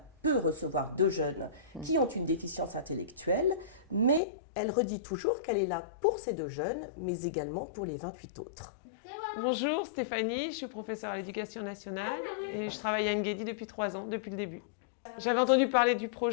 peut recevoir 2 jeunes qui ont une déficience intellectuelle, mais elle redit toujours qu'elle est là pour ces 2 jeunes, mais également pour les 28 autres. Bonjour Stéphanie, je suis professeure à l'éducation nationale et je travaille à Anne-Guédi depuis 3 ans, depuis le début. J'avais entendu parler du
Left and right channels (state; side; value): drops out; right; at 4.2 s